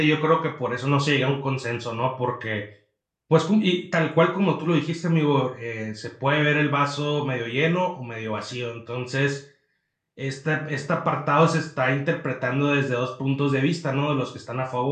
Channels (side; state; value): both; identical; correlation 1.00